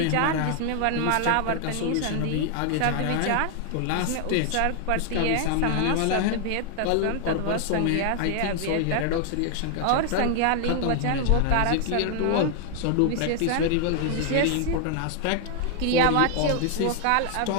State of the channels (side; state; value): both; different; correlation 0.00